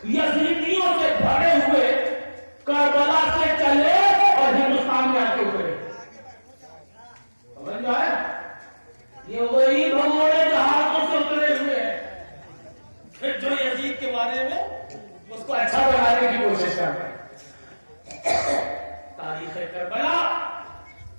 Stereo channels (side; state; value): both; inverted; correlation -1.00